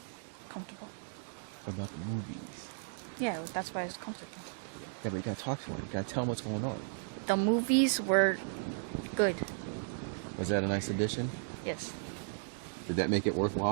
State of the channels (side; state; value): left; silent; digital silence